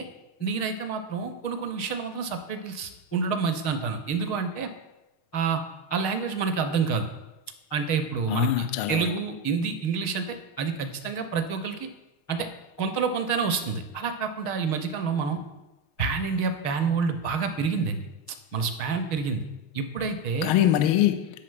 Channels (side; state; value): right; late; 6.4 ms